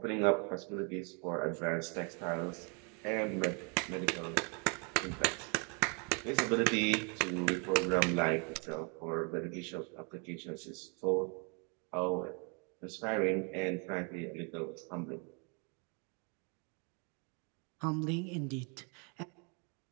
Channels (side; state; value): left; quieter; 35.7 dB